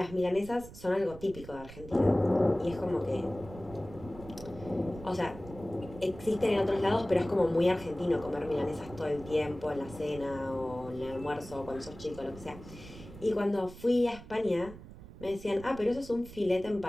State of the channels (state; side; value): noise; right; rumble, 15 dB below the sound